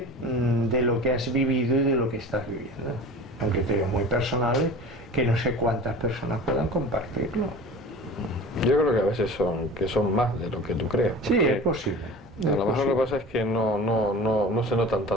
de lo que has vivido y de lo que estás viviendo. Son criterios muy personales que no sé cuántas personas puedan compartirlo. Yo creo que a veces son más de lo que tú crees. Sí, es posible. A lo mejor lo que pasa es que no se notan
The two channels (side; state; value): both; normal; correlation 0.37